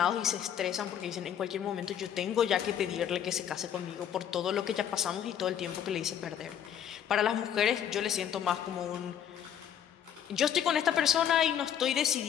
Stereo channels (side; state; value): right; quieter; 9.5 dB